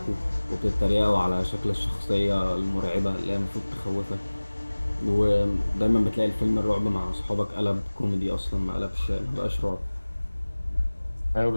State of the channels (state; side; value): inverted; both; correlation -1.00